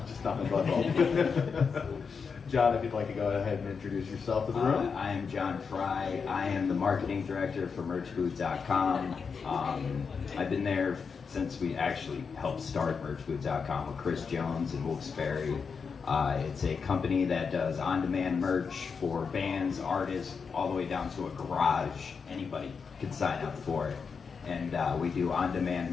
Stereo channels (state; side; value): quieter; right; 5.6 dB